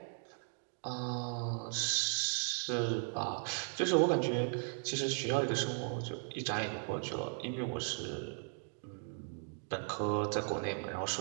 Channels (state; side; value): silent; left; 53 dB below the other